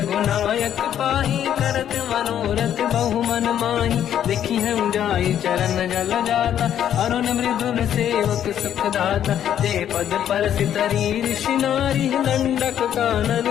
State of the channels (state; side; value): quieter; right; 10.1 dB